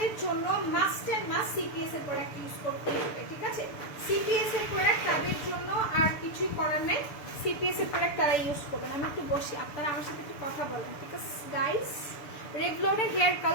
জন্য মাস্ট অ্যান্ড মাস্ট সিপিএস এর প্রোডাক্ট ইউজ করতে হবে, ঠিক আছে? সিপিএস এর প্রোডাক্ট তাদের জন্য, আর কিছুই করার নেই। সিপিএস এর প্রোডাক্ট তারা ইউজ করবেন। আমি একটু বসি, আপনারা আমার সাথে একটু কথা বলেন, ঠিক আছে গাইস? রেভলনের হেয়ার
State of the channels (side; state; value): right; late; 6.8 ms